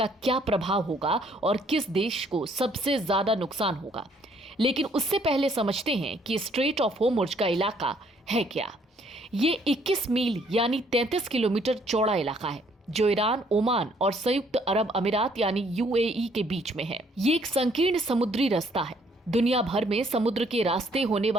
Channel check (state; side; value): normal; both; correlation 0.65